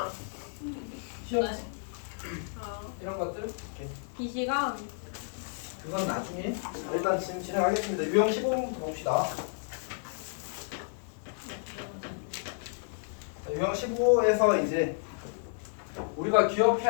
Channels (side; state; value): right; silent; digital silence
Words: 시험 이런 것들 이렇게. 비시간 그건 나중에. 자, 일단 지금 진행하겠습니다. 유형 15번부터 봅시다. 자, 유형 15에서 이제 우리가